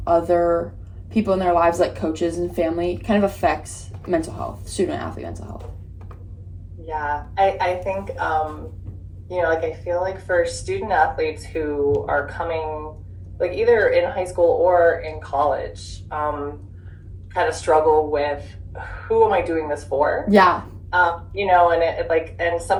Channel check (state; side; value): identical; both; correlation 1.00